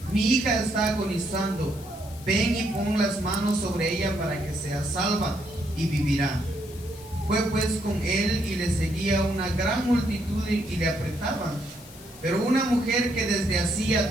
mi hija está agonizando, ven y pon las manos sobre ella para que sea salva y vivirá. Fue pues con él, y le seguía una gran multitud y le apretaban. Pero una mujer que desde hacía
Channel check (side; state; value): left; noise; hiss, 19 dB below the sound